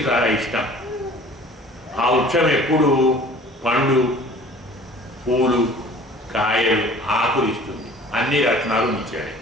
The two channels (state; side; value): normal; both; correlation 0.48